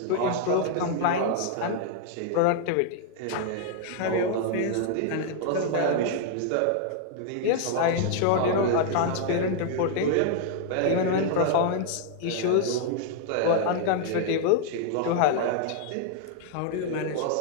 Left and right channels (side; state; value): both; different; correlation 0.00